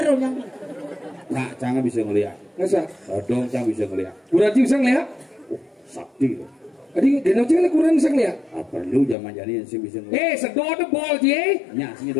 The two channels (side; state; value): right; drops out; at 9.2 s